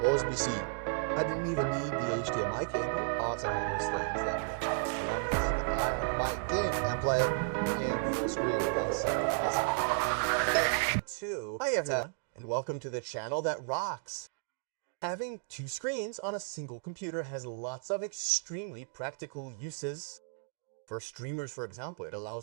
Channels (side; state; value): left; silent; digital silence